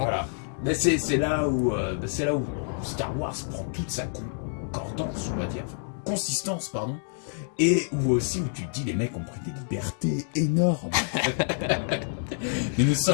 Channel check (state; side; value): silent; right; digital silence